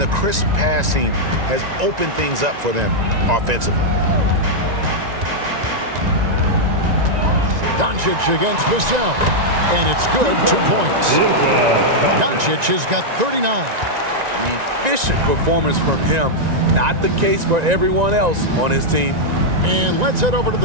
the crisp passing has opened things up for them offensively. Doncic against Vassell. And it's good, 2 points. Doncic has got 39. Efficient performance from him. Not the case for everyone else on his team. And let's head over to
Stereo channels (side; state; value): left; late; 1.9 ms